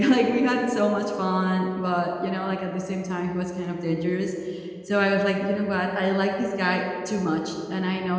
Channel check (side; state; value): both; identical; correlation 1.00